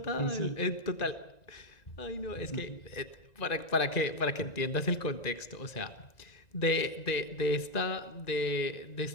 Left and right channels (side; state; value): right; late; 1.9 ms